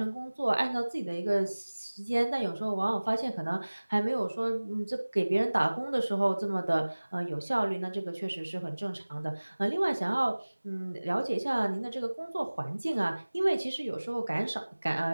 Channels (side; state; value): both; inverted; correlation -1.00